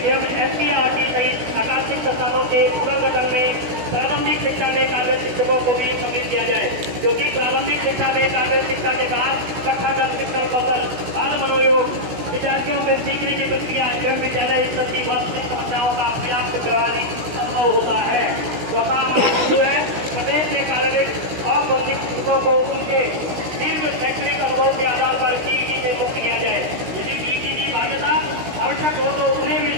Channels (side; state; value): left; late; 16 ms